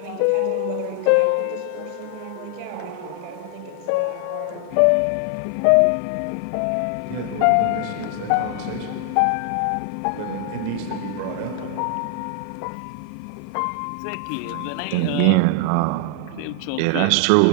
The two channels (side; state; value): both; different; correlation 0.00